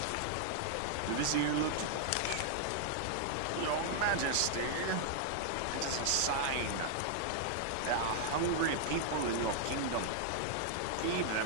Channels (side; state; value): both; different; correlation -0.01